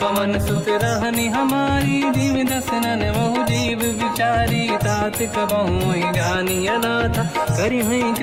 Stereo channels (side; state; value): both; identical; correlation 1.00